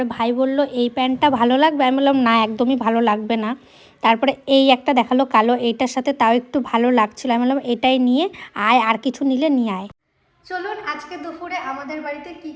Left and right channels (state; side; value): identical; both; correlation 1.00